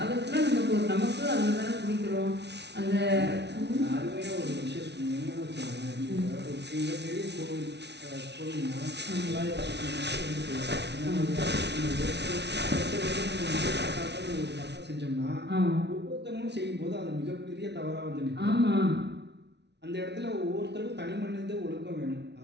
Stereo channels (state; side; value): late; left; 0.50 ms